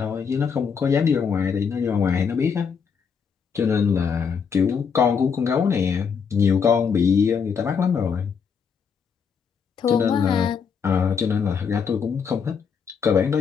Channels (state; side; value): quieter; right; 6.4 dB